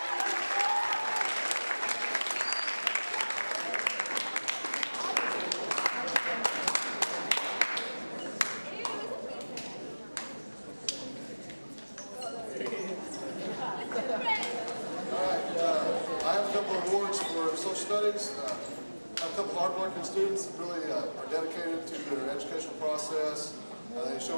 I have a couple of awards for social studies. I have a couple of hardworking students that really are dedicated to their educational process. They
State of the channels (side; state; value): both; inverted; correlation -1.00